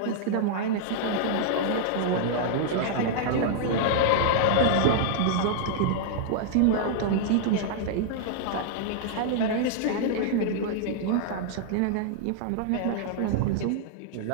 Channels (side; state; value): both; different; correlation -0.01